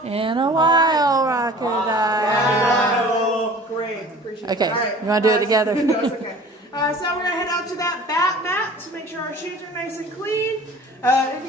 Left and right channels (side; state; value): both; normal; correlation 0.45